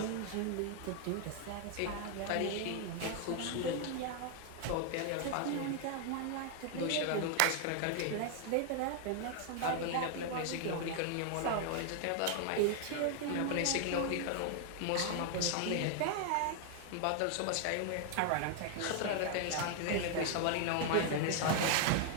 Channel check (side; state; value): both; different; correlation 0.00